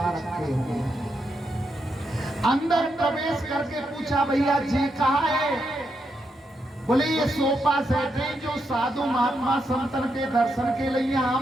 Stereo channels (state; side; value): normal; both; correlation 0.82